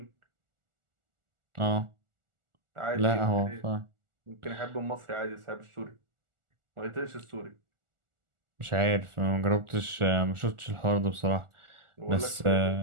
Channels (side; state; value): left; late; 1.4 ms